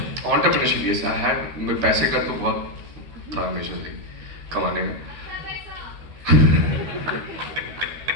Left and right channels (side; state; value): left; late; 13 ms